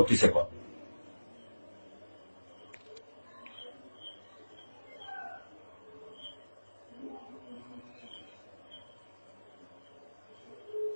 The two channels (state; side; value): inverted; both; correlation -1.00